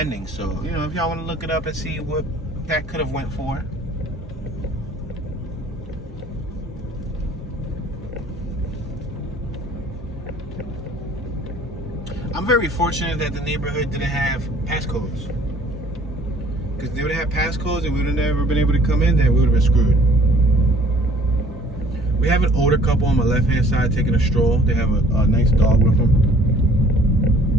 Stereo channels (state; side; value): normal; both; correlation 0.54